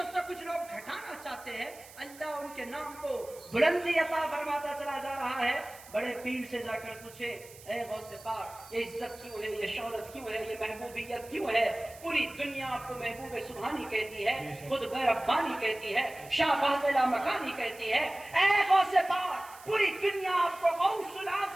کچھ لوگ گھٹانا چاہتے ہیں, اللہ ان کے نام کو بلندی عطا فرماتا چلا جا رہا ہے. بڑے پیر سے جا کر پوچھے اے غوث پاک یہ عزت کیوں ہے, یہ شہرت کیوں ہے, یہ محبوبیت کیوں ہے؟ پوری دنیا آپ کو محبوب سبحانی کہتی ہے, خود غیر ربانی کہتی ہے, شاہ فاضلہ مکانی کہتی ہے. اے غوث پاک پوری دنیا آپ کو غوث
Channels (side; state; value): right; noise; hiss, 20 dB below the sound